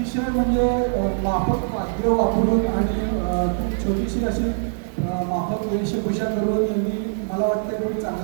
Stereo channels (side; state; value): left; silent; digital silence